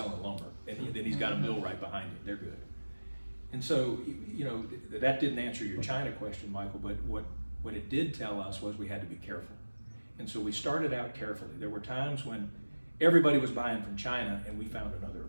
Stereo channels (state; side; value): inverted; both; correlation -1.00